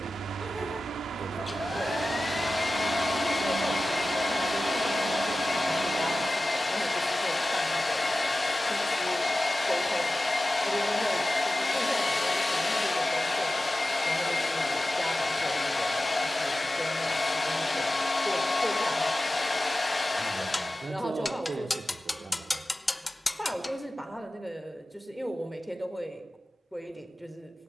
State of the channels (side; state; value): both; normal; correlation 0.95